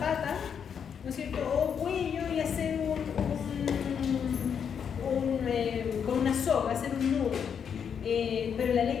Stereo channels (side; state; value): right; quieter; 7.4 dB